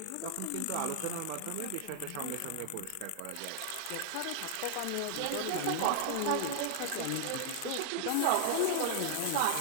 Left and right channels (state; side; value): different; both; correlation 0.00